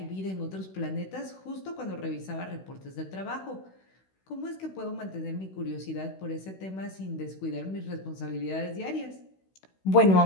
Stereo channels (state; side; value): late; right; 16 ms